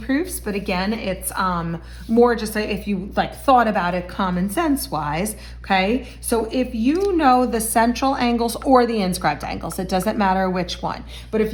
but again, it's more just if you thought about it common sense wise. Okay, so if you know the central angles or the inscribed angles, it doesn't matter which one, but if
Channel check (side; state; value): both; identical; correlation 1.00